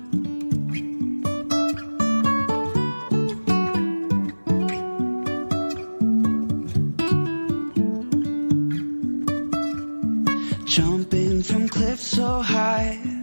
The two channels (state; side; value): inverted; both; correlation -1.00